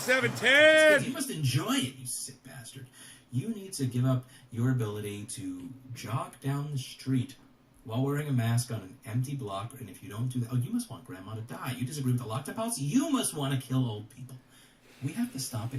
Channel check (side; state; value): both; identical; correlation 1.00